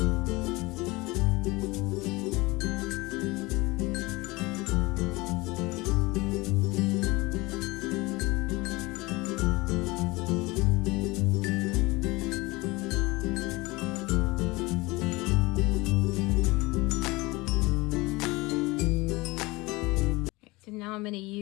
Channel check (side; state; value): right; quieter; 22.7 dB